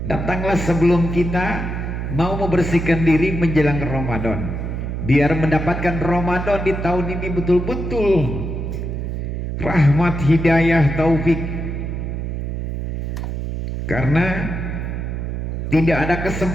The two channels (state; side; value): noise; right; hum, 4 dB below the sound